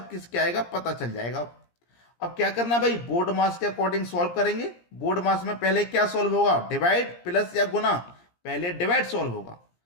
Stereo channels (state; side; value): late; right; 17 ms